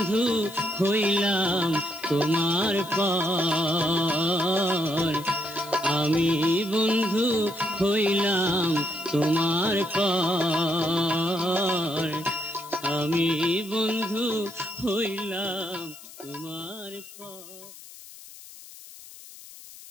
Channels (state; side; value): noise; left; hiss, 17 dB below the sound